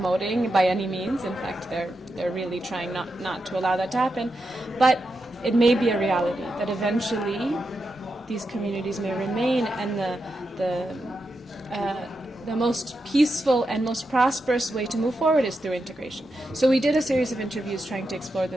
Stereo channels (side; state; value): both; normal; correlation 0.87